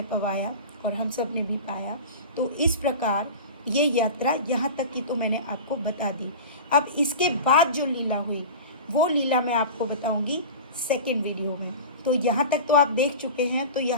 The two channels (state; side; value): inverted; both; correlation -0.32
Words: पवाया, और हम सब ने भी पाया। तो इस प्रकार ये यात्रा यहाँ तक की तो मैंने आपको बता दी। अब इसके बाद जो लीला हुई वो लीला मैं आपको बताऊँगी सेकेंड वीडियो में। तो यहाँ तक तो आप देख चुके हैं, तो